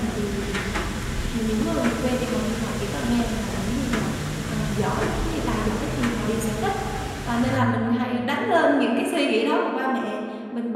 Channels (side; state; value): both; identical; correlation 1.00